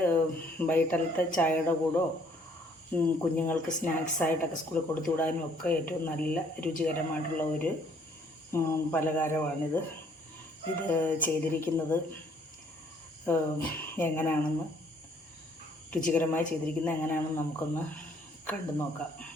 വൈകിട്ടത്തെ ചായയുടെ കൂടോ കുഞ്ഞുങ്ങൾക്ക് സ്നാക്സായിട്ടൊക്കെ സ്കൂളിൽ കൊടുത്തു വിടാനും ഒക്കെ ഏറ്റവും നല്ല രുചികരമായിട്ടുള്ള ഒരു പലഹാരമാണിത്. ഇത് ചെയ്തിരിക്കുന്നത് എങ്ങനെയാണെന്ന്, രുചികരമായി ചെയ്തിരിക്കുന്നത് എങ്ങനെയാണെന്ന് നമുക്കൊന്ന് കണ്ടു നോക്കാം.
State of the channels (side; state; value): both; normal; correlation 0.63